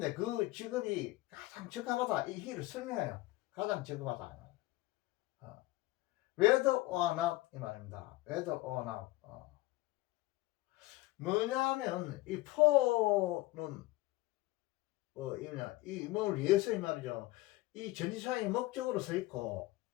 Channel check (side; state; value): right; quieter; 18.9 dB